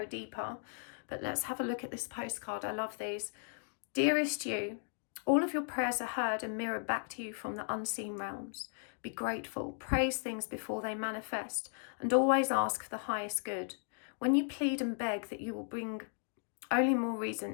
deeper. But let's have a look at this postcard. I love these. Dearest you, all of your prayers are heard and mirrored back to you from the unseen realms. Be grateful, praise things before they manifest, and always ask for the highest good. When you plead and beg, that you will bring only more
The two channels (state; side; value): silent; right; 54 dB below the other